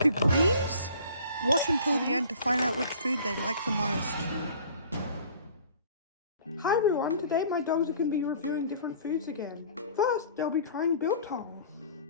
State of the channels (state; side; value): inverted; both; correlation -0.49